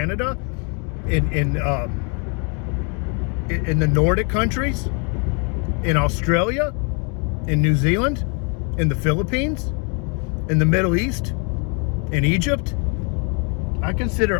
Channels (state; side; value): quieter; right; 36.3 dB